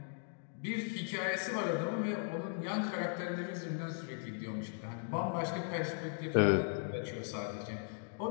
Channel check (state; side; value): silent; right; 53 dB below the other